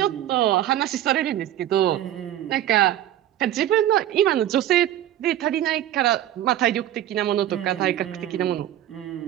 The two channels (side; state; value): left; quieter; 12.3 dB